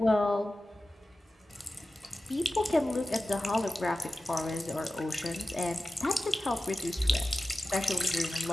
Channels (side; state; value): both; normal; correlation 0.94